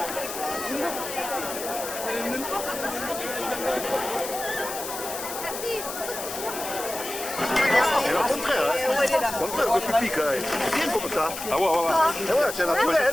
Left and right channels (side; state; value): left; noise; hiss, 8 dB below the sound